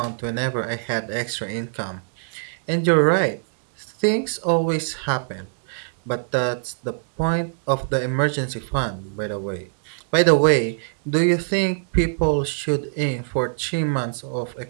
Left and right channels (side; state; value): left; silent; digital silence